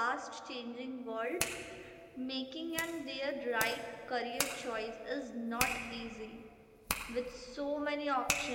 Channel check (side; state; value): both; identical; correlation 1.00